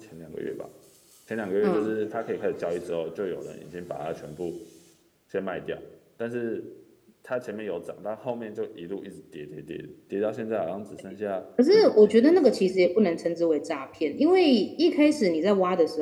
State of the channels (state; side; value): identical; both; correlation 1.00